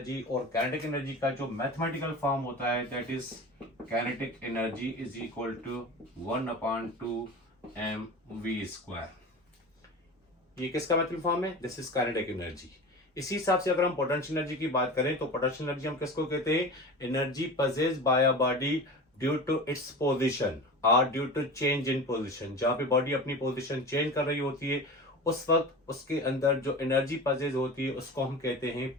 और काइनेटिक एनर्जी का जो मैथमेटिकल फॉर्म होता है that is kinetic energy is equal to 1/2 mv²। ये किसका मैथमेटिकल फॉर्म है? This is kinetic energy. इसी हिसाब से अगर हम पोटेंशियल एनर्जी की बात करें तो पोटेंशियल एनर्जी हम किसको कहते हैं? Energy possessed by a body due to its position और due to change in position. जहां पे बॉडी अपनी पोजीशन चेंज कर रही होती है उस वक्त उसके अंदर जो एनर्जी पजेज होती है उसको हम कहते हैं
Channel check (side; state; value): both; normal; correlation 0.32